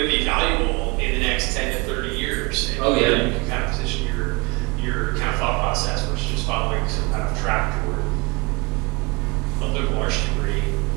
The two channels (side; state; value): left; quieter; 26.8 dB